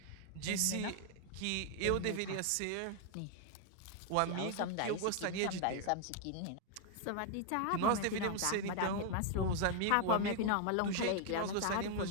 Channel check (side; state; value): both; different; correlation 0.00